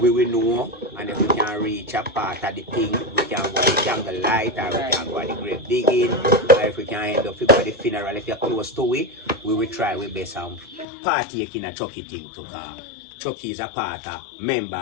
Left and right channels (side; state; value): right; drops out; at 10.9 s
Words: will know, and if we can reach a part of the thing, we can go to the candle light or we can go at the grave digging, or if we can end up with the funeral, if you're close to it, we will try our best and partaking a Chucky thing to car. Chucky is a part of